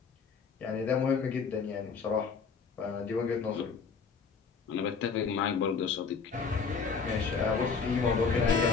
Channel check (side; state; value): right; quieter; 5.4 dB